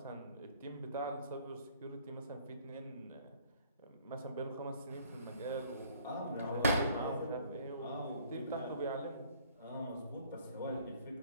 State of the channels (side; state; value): both; inverted; correlation -0.58